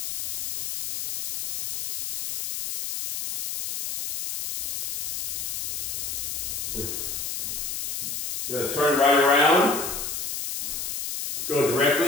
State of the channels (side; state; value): left; noise; hiss, 4 dB below the sound